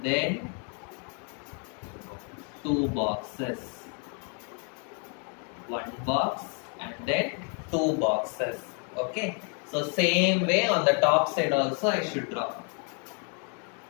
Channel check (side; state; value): right; quieter; 39.5 dB